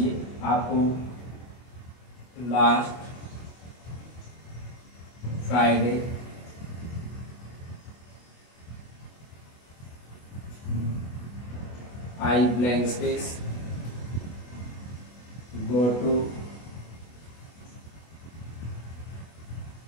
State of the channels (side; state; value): right; late; 24 ms